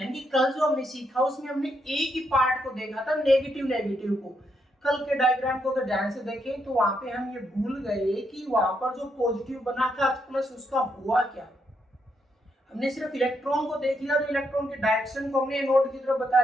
कि कल जो हमने सीखा उसमें हमने एक ही पार्ट को देखा था, नेगेटिव को। कल के डायग्राम को अगर ध्यान से देखें तो वहां पे हम ये भूल गए कि वहां पर जो पॉजिटिव बना था प्लस उसका हुआ क्या। हमने सिर्फ इलेक्ट्रॉन को देख लिया, तो इलेक्ट्रॉन के डायरेक्शन को हमने एनोड की तरफ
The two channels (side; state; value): both; normal; correlation 0.78